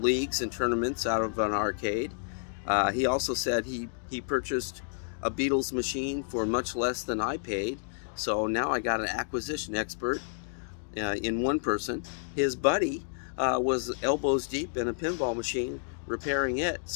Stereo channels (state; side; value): silent; right; digital silence